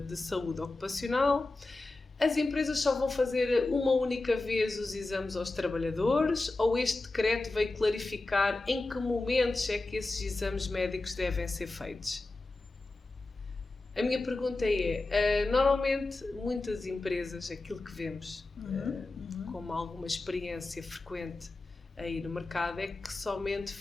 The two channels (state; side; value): quieter; right; 3.1 dB